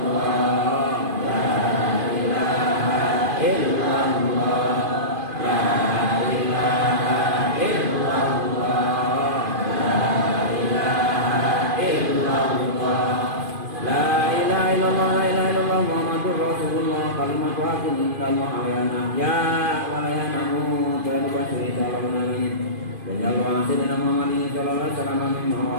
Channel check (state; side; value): late; left; 2.5 ms